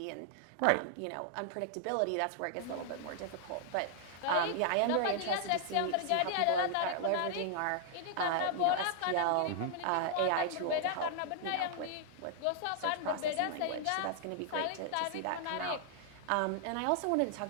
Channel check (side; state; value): both; different; correlation -0.01